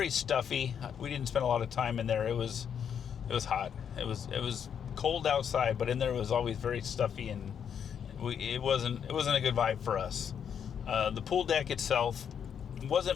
stuffy. We didn't spend a lot of time in there. It was hot. It was cold outside, but in there it was always very stuffy, and it wasn't a good vibe for us. The pool deck itself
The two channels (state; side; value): quieter; right; 8.0 dB